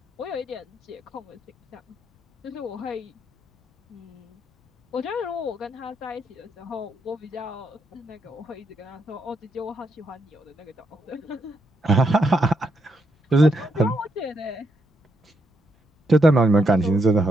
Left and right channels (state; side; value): normal; both; correlation 0.79